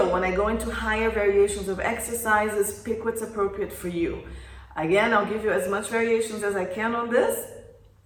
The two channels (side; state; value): both; identical; correlation 1.00